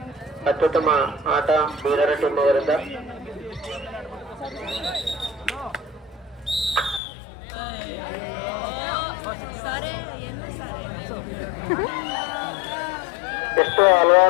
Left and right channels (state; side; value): drops out; right; at 7.0 s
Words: ಅತ್ಯುತ್ತಮ ಆಟ ಬೀದರ್ ಟೀಮ್ ಅವರಿಂದ. ಎಷ್ಟು